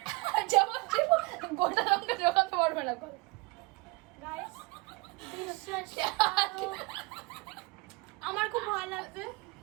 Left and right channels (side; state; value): left; quieter; 26.0 dB